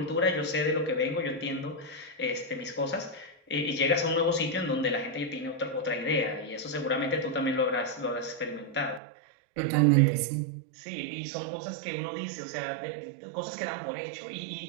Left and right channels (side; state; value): left; drops out; at 9.0 s